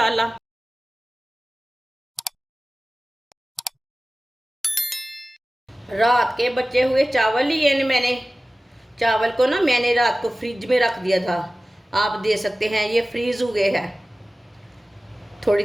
रात के बचे हुए चावल लिए ने मैंने। चावल को ना मैंने रात को फ्रिज में रख दिया था। आप दे सकते हैं ये फ्रीज हो गए हैं।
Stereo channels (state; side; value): normal; both; correlation 0.96